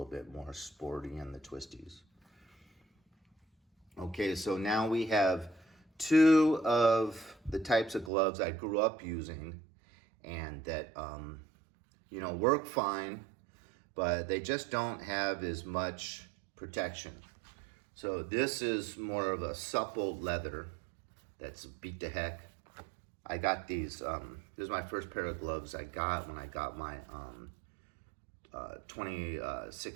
bit more sporty in the twisties. Okay, so now we have 2 of the types of gloves I grew up using and that, work fine, but they just don't have as much protection. So this is more of a supple leather that's beat to heck. I got these, this is my first pair of gloves I got when I got my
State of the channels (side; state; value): left; drops out; at 8.1 s